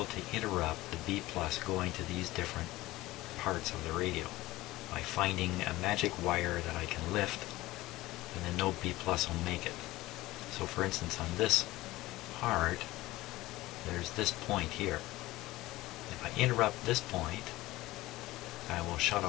to interrupt the B+ going to these different parts of the radio by finding a magic wire that I can lift, and then no B+ will make it. So for instance, on this part, there's this point here. If I interrupt this point, I will shut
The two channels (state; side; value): quieter; right; 18.2 dB